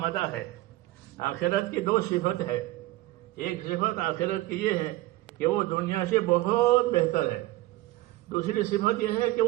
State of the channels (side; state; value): left; quieter; 17.6 dB